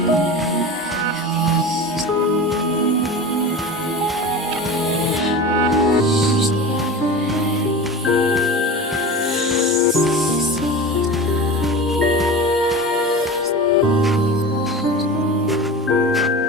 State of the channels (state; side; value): normal; both; correlation 0.31